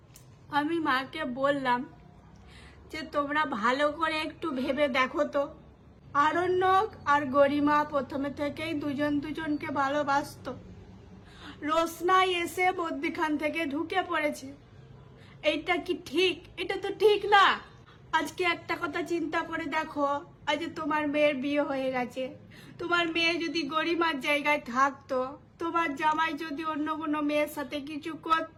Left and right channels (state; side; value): identical; both; correlation 1.00